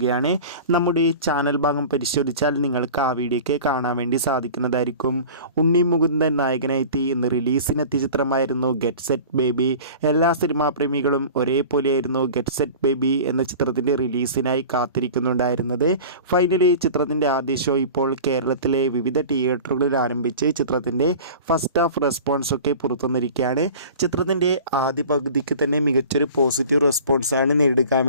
നമ്മുടെ ഈ ചാനൽ ഭാഗം പരിശോധിച്ചാൽ നിങ്ങൾക്ക് ആ വീഡിയോയ്ക്ക് കാണാൻ വേണ്ടി സാധിക്കുന്നതായിരിക്കും. ഉണ്ണി മുകുന്ദൻ നായകനായി ഇന്ന് റിലീസിനെത്തിയ ചിത്രമായിരുന്നു ഗെറ്റ് സെറ്റ് ബേബി. എല്ലാ സിനിമാ പ്രേമികളും ഒരേപോലെയായിരുന്നു ഗെറ്റ് സെറ്റ് ബേബി എന്ന ചിത്രത്തിൻ്റെ റിലീസിനായി കാത്തിരിക്കുന്നുണ്ടായിരുന്നത്. ഫൈനലി ചിത്രത്തിൻ്റെ ആദ്യ ഷോ ഇപ്പോൾ കേരളത്തിലെ വിവിധ തിയേറ്ററുകളിൽ ആരംഭിച്ച് ചിത്രത്തിൻ്റെ ഫസ്റ്റ് ഹാഫ് റെസ്പോൺസൊക്കെ പുറത്തുവന്നിരിക്കുകയാണ്. ചിത്രത്തിൻ്റെ ആദ്യ പകുതിക്ക് തന്നെ മികച്ചൊരു പോസിറ്റീവ് റെസ്പോൺസാണ് നേടിയെടുക്കാൻ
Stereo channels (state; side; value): inverted; both; correlation -0.39